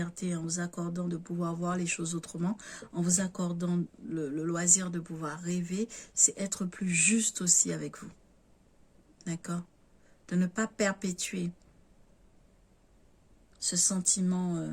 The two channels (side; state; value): both; identical; correlation 1.00